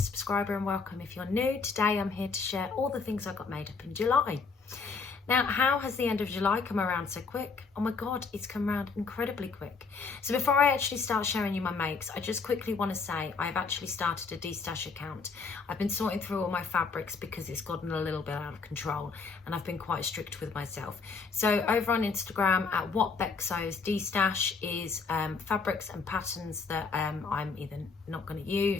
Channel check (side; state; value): right; quieter; 4.9 dB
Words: and welcome if you're new. Today I'm here to share all the things I got made up in July. Now, how has the end of July come around so quick? Oh my God, it's come around incredibly quick. So before I actually start showing you my makes, I just quickly want to say I've actually started a destash account. I've been sorting through all my fabrics because it's gotten a little bit out of control and I've been quite strict with myself. So over on Instagram at Whatbecsewsdestash is fabrics and patterns that I'm either not going to